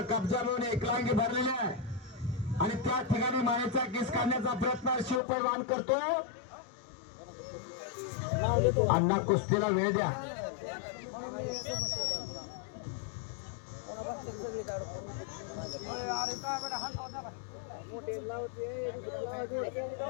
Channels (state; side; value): drops out; right; at 5.2 s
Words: कब्जा म्हणून एकलांगी भरलेला आहे आणि त्या ठिकाणी मानेचा किस काढण्याचा प्रयत्न शिवपैलवान करतोय. अण्णा कुस्तीला वेळ द्या.